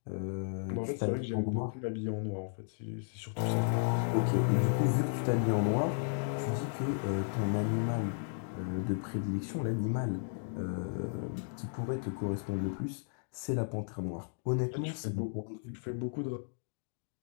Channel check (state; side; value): silent; right; digital silence